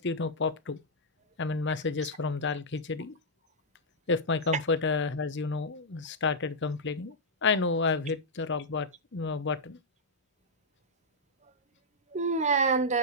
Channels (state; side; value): normal; both; correlation -0.08